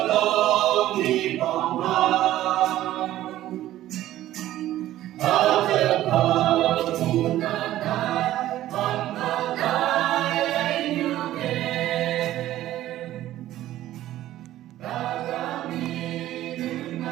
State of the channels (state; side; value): quieter; left; 14.0 dB